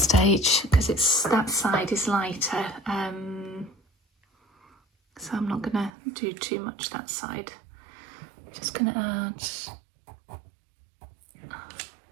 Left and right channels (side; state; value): left; drops out; at 5.9 s